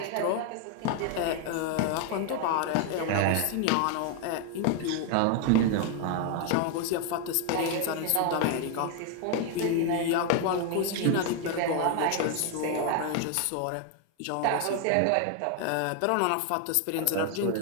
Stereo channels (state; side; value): different; both; correlation 0.01